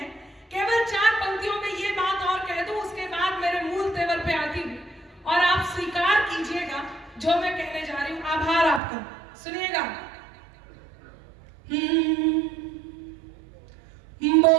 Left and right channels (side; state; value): left; drops out; at 8.8 s